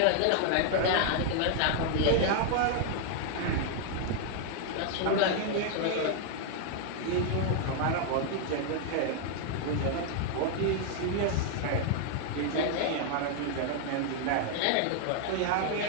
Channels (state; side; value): different; both; correlation 0.00